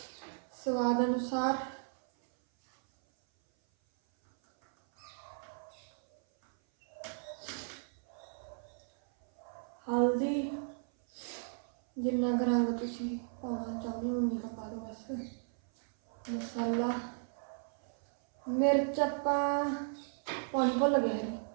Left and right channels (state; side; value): silent; left; 54 dB below the other